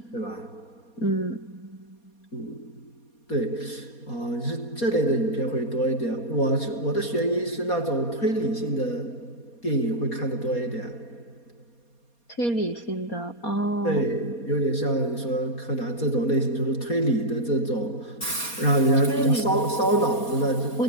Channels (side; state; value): right; late; 4.2 ms